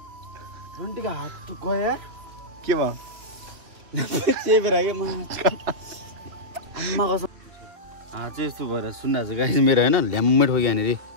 घन्टीको हात त गयो के भयो चेपेर के माथि आम्मा कसम हात चाहिँ यस्तो भएर सुन्दाछ गाइस मेरो हैन ल्याम्मै ठोक्यो यहाँनिर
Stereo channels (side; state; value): left; late; 3.2 ms